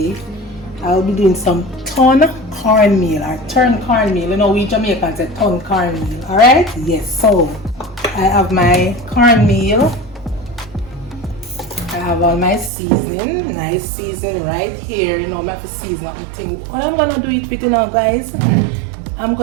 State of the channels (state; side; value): drops out; left; at 12.7 s